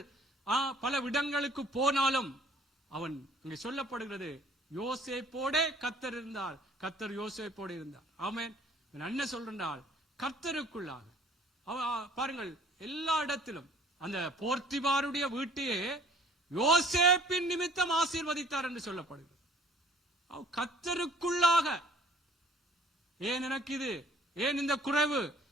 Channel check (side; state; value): both; normal; correlation 0.55